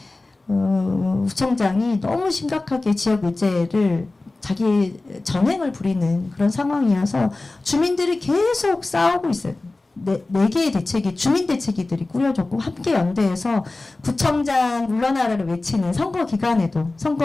구청장이 너무 심각하게 지역 의제를 자기 전횡을 부리는 그런 상황이어서 주민들이 계속 싸우고 있어요. 네 개의 대책이, 주민 대책위들이 꾸려졌고, 함께 연대해서 구청장 물러나라를 외치는 선거 기간에도,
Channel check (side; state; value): right; quieter; 3.2 dB